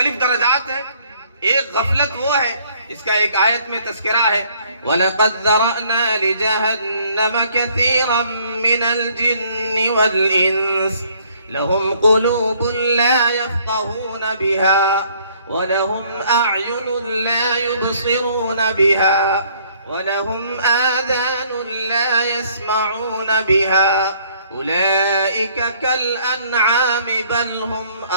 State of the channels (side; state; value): both; inverted; correlation -0.62